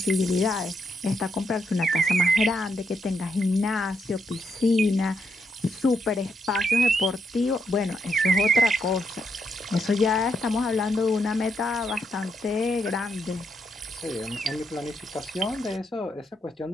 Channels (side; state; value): both; normal; correlation 0.79